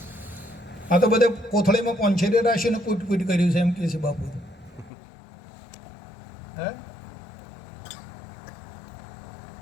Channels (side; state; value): right; drops out; at 4.9 s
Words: આ તો બધે કોથળીમાં પોંછેરી રાશિને કૂટ કૂટ કર્યું છે એમ કે છે બાપુ. હે?